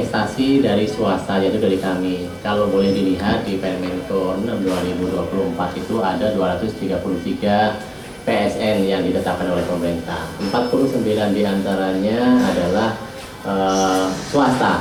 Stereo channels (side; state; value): both; identical; correlation 1.00